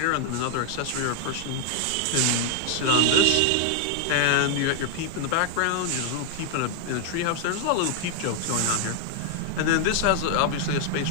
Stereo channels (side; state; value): both; different; correlation 0.00